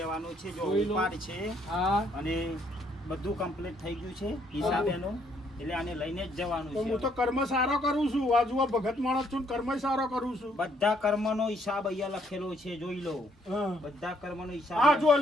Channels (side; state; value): both; normal; correlation 0.69